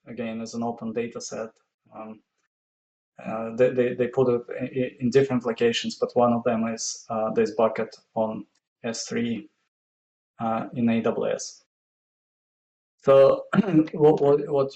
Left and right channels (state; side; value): identical; both; correlation 1.00